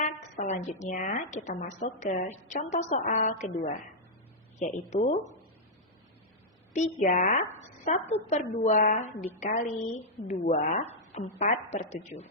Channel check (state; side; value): normal; both; correlation -0.07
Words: selanjutnya kita masuk ke contoh soal kedua, yaitu 3/1/2 dikali 2 4/7.